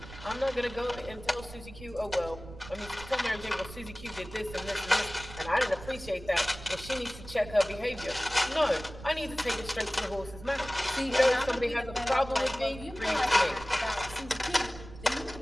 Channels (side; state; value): right; noise; rumble, 15 dB below the sound